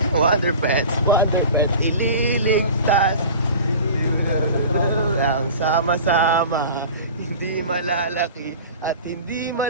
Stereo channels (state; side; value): inverted; both; correlation -0.38